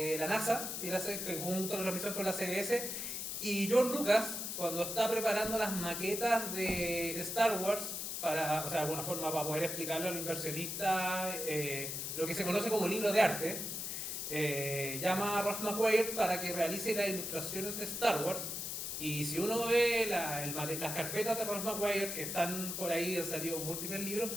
la NASA, y él hace junto a la revisión con la CBS. Y George Lucas, cuando está preparando las maquetas de Star Wars, o sea, de alguna forma para poder explicarle a los inversionistas lo que se conoce como libro de arte, llama a Ralph McQuarrie para que realice las ilustraciones de Star Wars. Y si uno ve las carpetas de Ralph McQuarrie, que están por ahí, han salido múltiples libros,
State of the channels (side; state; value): left; noise; hiss, 4 dB below the sound